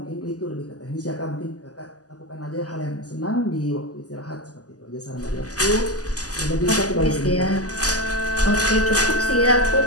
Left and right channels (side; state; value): right; late; 0.67 ms